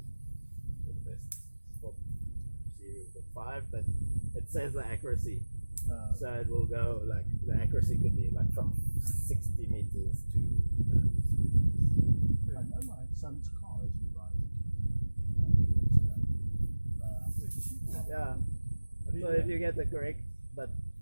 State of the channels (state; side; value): inverted; both; correlation -1.00